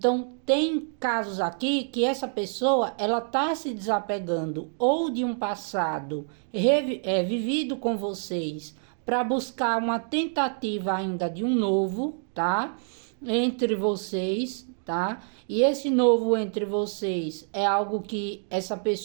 tem casos aqui que essa pessoa ela tá se desapegando ou de um passado vivido com vocês para buscar uma tentativa ainda de um novo, tá? Entre vocês, tá? E esse novo entre vocês é algo que essa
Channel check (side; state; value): left; silent; 60 dB below the other